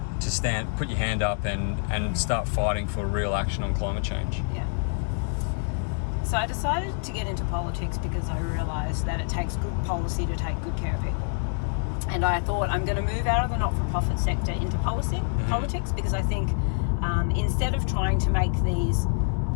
stand, put your hand up and start fighting for real action on climate change? Yeah. So I decided to get into politics because I realised that it takes good policy to take good care of people. And I thought I'm going to move out of the not-for-profit sector into politics because I think instead of trying to make these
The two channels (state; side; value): silent; right; 57 dB below the other